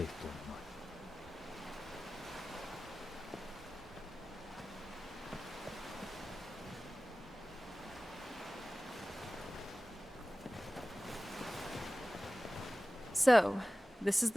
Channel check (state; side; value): normal; both; correlation 0.97